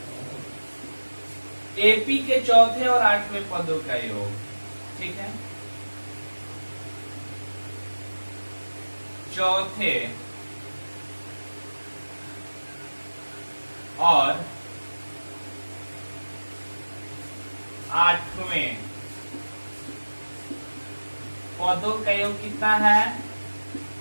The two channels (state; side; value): inverted; both; correlation -1.00